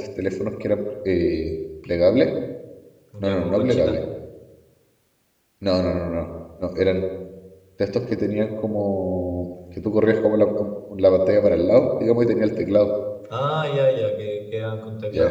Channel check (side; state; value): both; identical; correlation 1.00